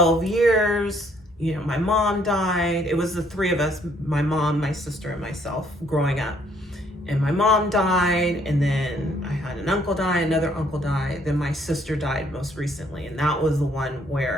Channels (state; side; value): normal; both; correlation 0.66